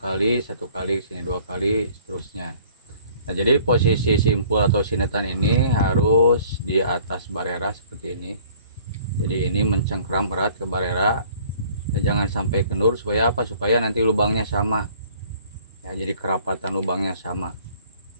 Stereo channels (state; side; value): inverted; both; correlation -0.55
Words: 1 kali, sini 2 kali, seterusnya. Nah jadi posisi simpul atau sinetan ini harus di atas barera seperti ini. Jadi ini mencengkram erat ke barera. Ya, jangan sampai kendur, supaya apa? Supaya nanti lubangnya sama. Ya, jadi kerapatan lubangnya sama.